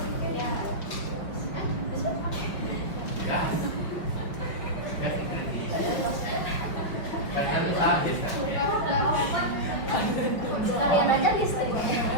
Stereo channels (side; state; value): right; late; 5.2 ms